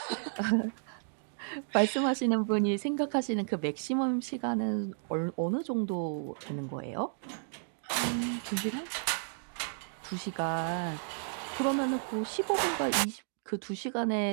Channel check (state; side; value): silent; left; digital silence